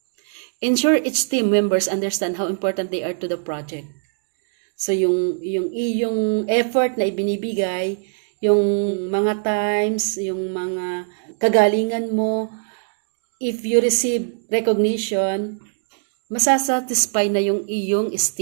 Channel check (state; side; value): silent; left; digital silence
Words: Ensure each team members understand how important they are to the project. So, yung iyong effort na ibinibigay, yung mga times, yung mga kagalingan mo, if you receive recognition, masasatisfy na yung iyong